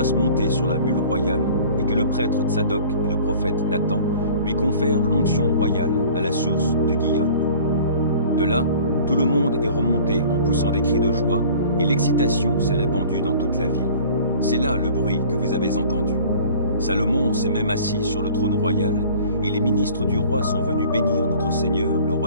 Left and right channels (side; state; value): both; inverted; correlation -0.47